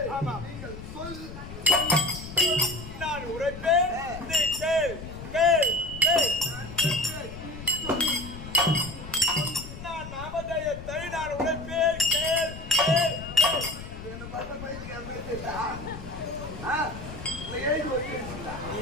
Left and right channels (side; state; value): left; noise; rumble, 11 dB below the sound